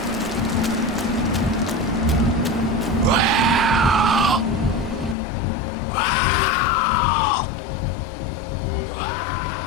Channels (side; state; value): right; drops out; at 5.2 s